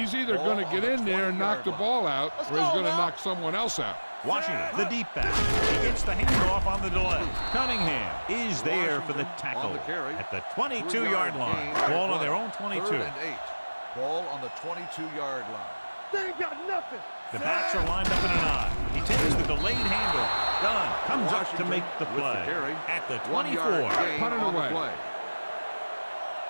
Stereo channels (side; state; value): both; inverted; correlation -1.00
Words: either going to get in there and knock the ball out, or he's going to knock someone else out. Washington, the deep back. He gets the handoff on the delay. Cunningham is there for the tackle at the 22-yard line. Ball on their own 22. 3rd and 8. Ball on the 22-yard line. They ain't got nothing. The backs are lined up in an I. He takes the delayed handoff. Dunn comes up to make the play at the 24. Put it away.